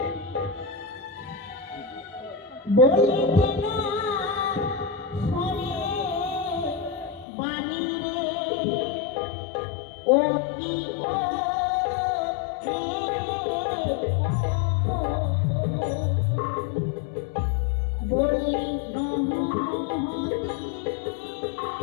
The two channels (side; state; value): right; drops out; at 7.2 s